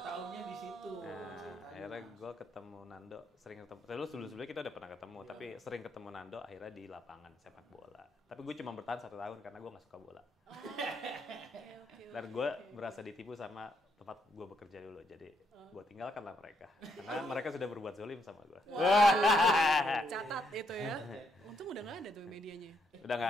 tahunnya di situ. Nah, akhirnya gue ketemu Nando, sering ketemu. Terus sebelumnya kita udah pernah ketemu, tapi sering ketemu Nando akhirnya di lapangan sepak bola. Tapi gue cuma bertahan 1 tahun karena gue nggak suka bola. Dan gue berasa ditipu sama tempat gue bekerja dulu, jadi gue tinggalkanlah mereka karena mereka sudah berbuat zolim sama gue. Catat itu ya. Untung udah nggak ada tuh medianya. Udah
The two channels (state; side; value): normal; both; correlation 0.75